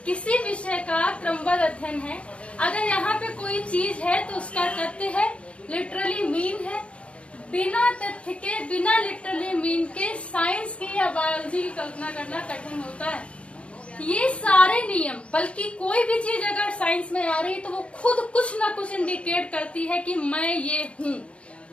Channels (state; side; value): late; right; 0.060 ms